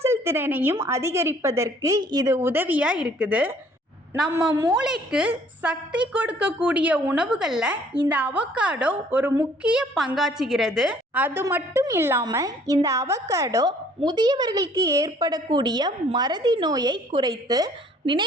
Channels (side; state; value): both; normal; correlation 0.58